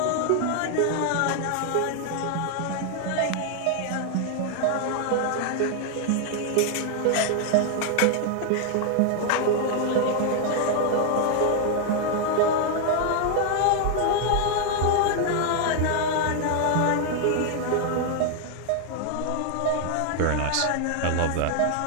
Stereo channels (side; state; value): both; different; correlation 0.00